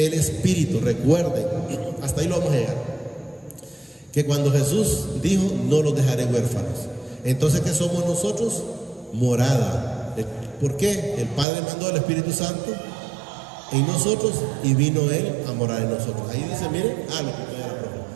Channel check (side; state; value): left; drops out; at 11.5 s